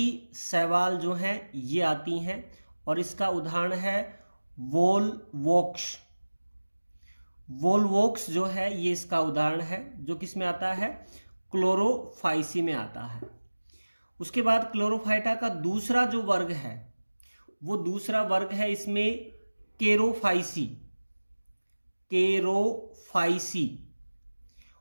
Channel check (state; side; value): inverted; both; correlation -1.00